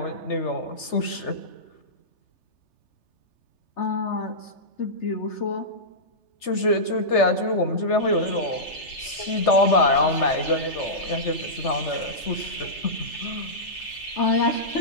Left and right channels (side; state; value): right; late; 3.3 ms